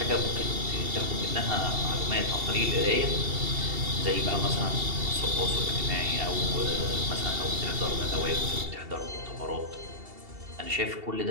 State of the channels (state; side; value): late; left; 2.7 ms